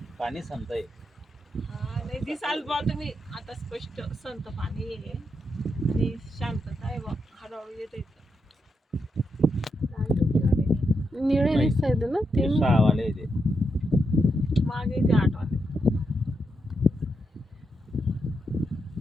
पाणी संतय. नाही दिसाल बा तुम्ही आता स्पष्ट संत पाणी आहे आणि शांतता आहे बा. हळूहळू येते. निळे दिसत ना ते 6 वाले ते मागे ते 8 वाले.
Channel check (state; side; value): normal; both; correlation 0.83